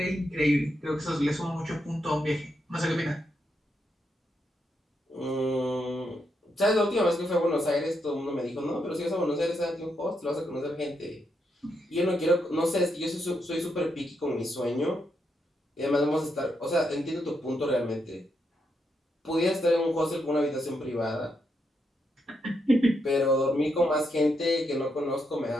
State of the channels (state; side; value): normal; both; correlation 0.81